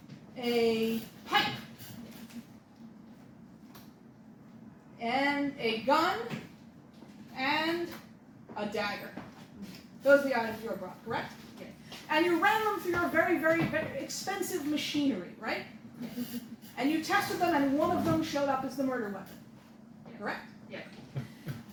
a pipe, and a gun, and a dagger. Those are the items you were brought, correct? Yes. And you ran them through your very, very, very expensive machinery, right? Yes. And you tested them, and one of them showed up as the murder weapon, correct? Yes.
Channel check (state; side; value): identical; both; correlation 1.00